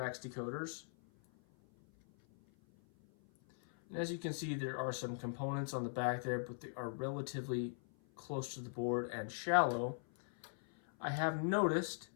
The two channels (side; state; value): right; silent; 51 dB below the other